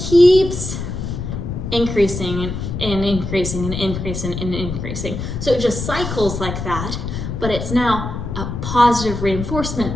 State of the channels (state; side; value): noise; left; rumble, 5 dB below the sound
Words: keeps increasing and increasing and increasing and increasing. So it just cycles like that, but it's now a positive